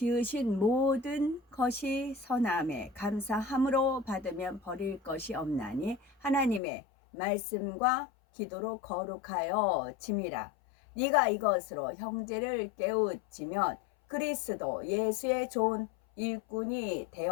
모든 것이 선함에 감사함으로 받으면 버릴 것이 없나니 하나님의 말씀과 기도로 거룩하여 짐이라. 네가 이것으로 형제를 깨우치면 그리스도 예수의 좋은 일꾼이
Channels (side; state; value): right; drops out; at 6.6 s